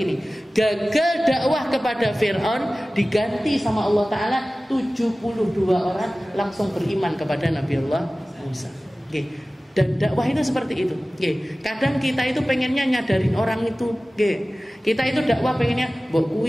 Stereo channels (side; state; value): both; normal; correlation 0.97